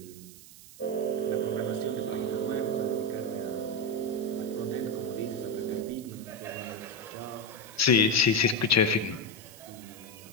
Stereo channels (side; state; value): right; noise; hiss, 19 dB below the sound